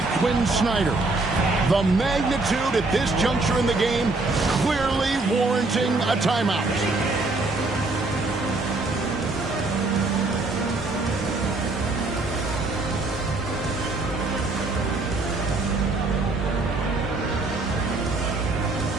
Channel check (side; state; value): left; quieter; 3.3 dB